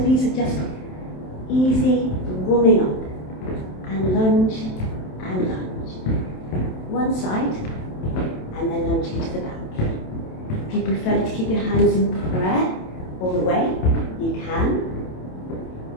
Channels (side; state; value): right; late; 27 ms